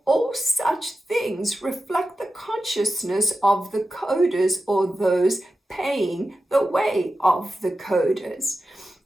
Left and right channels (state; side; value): normal; both; correlation 0.92